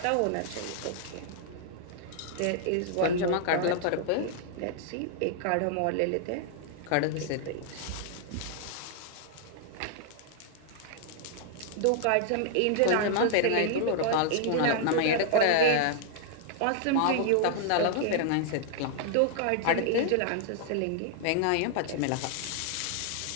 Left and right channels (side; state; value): both; different; correlation 0.00